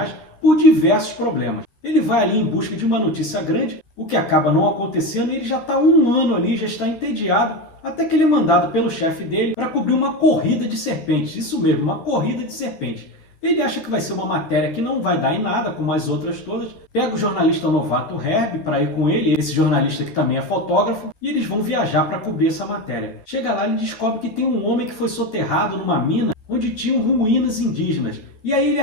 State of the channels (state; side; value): late; right; 12 ms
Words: por diversos problemas. Ele vai ali em busca de uma notícia grande, o que acaba não acontecendo, e ele já está um ano ali, já está entediado, até que ele é mandado pelo chefe dele para cobrir uma corrida de serpentes. Isso mesmo, uma corrida de serpentes. Ele acha que vai ser uma matéria que não vai dar em nada, como as outras todas. Pega o jornalista novato Herbie para ir com ele, esse jornalista que também é fotógrafo, e eles vão viajar para cobrir essa matéria. Chega lá e descobre que tem um homem que foi soterrado numa mina onde tinham ruínas indígenas. E aí ele